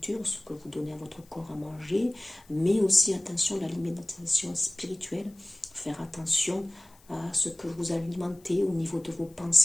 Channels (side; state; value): left; noise; hiss, 28 dB below the sound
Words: ce que vous donnez à votre corps à manger, mais aussi attention à l'alimentation spirituelle, faire attention à ce que vous alimentez au niveau de vos